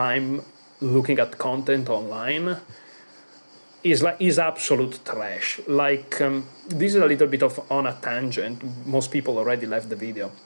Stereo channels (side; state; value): both; inverted; correlation -1.00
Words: looking at content online. Is absolute trash. Like this is a little bit of on a tangent. Most people already left the video,